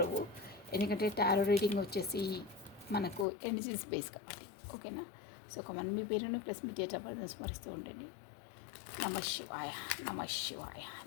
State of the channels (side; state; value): right; drops out; at 3.2 s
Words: ఎందుకంటే టారో రీడింగ్ వచ్చేసి మనకు ఎనర్జీస్ బేస్ కాబట్టి. ఓకేనా. సో కమన్ మీ పేరును plus me date of birth స్మరిస్తూ ఉండండి. నమ శివాయ, నమ శివాయ,